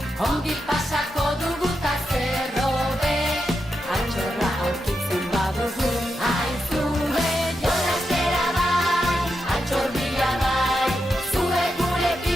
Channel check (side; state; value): both; normal; correlation 0.86